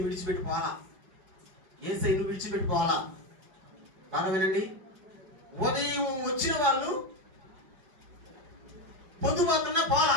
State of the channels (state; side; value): late; left; 4.7 ms